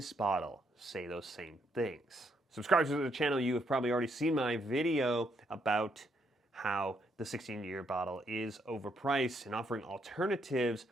bottle say those same things? Subscribers to the channel, you have probably already seen my video about how the 16-year bottle is overpriced and offering alternatives.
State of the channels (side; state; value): both; normal; correlation 0.75